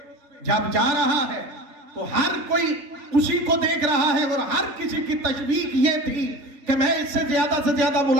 جب جا رہا ہے تو ہر کوئی اسی کو دیکھ رہا ہے، اور ہر کسی کی تشویق یہ تھی کہ میں اس سے زیادہ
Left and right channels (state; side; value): late; left; 3.8 ms